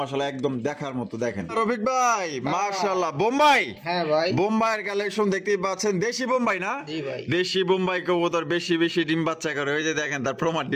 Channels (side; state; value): both; identical; correlation 1.00